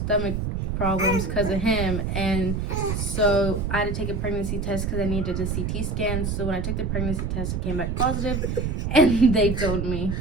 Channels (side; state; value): right; noise; rumble, 1 dB below the sound